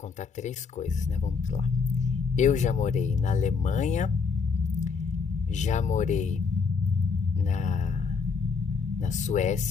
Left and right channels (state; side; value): quieter; right; 5.3 dB